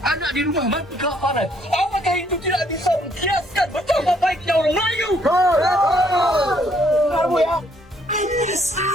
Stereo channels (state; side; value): normal; both; correlation 0.67